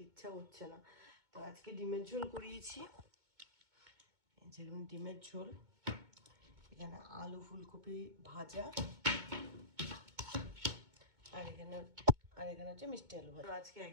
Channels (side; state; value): left; late; 2.2 ms